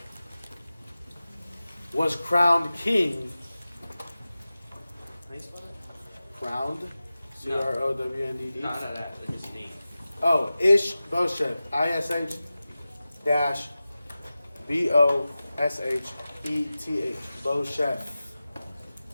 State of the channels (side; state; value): both; inverted; correlation -0.95